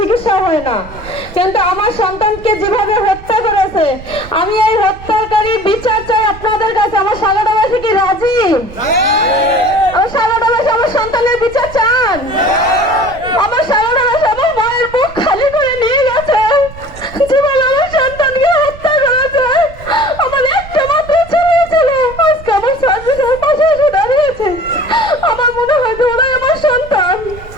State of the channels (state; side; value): noise; right; rumble, 16 dB below the sound